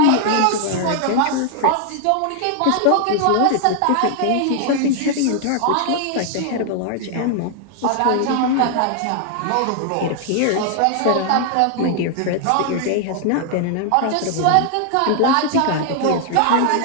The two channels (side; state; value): both; different; correlation 0.00